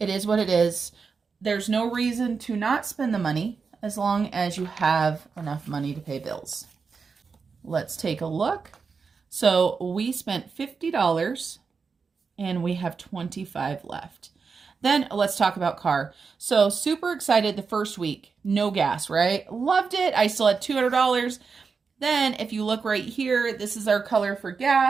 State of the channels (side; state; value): left; quieter; 5.2 dB